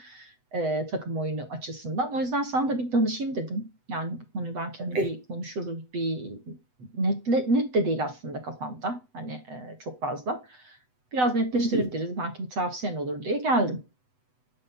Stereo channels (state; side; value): late; left; 8.0 ms